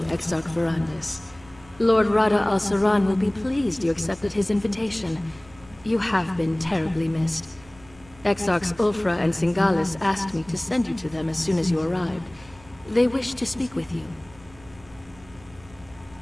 Exarch Verandis. Lord Rada al-Saran will be pleased you accepted his invitation. You have been terribly missed. Exarchs Ulfra and Singalis asked me to send you to them as soon as you arrived. They wish to speak with you.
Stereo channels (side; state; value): right; noise; hum, 24 dB below the sound